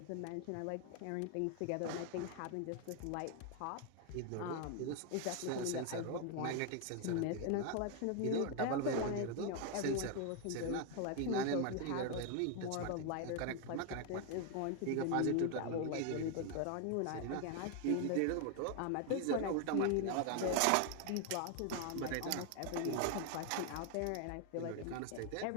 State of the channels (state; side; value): different; both; correlation 0.00